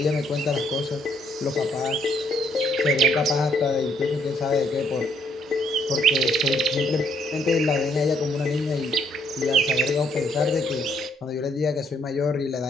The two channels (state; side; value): normal; both; correlation 0.69